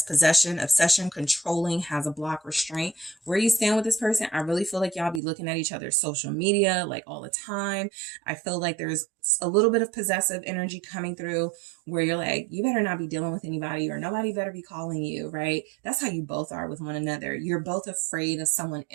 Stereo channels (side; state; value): left; drops out; at 5.2 s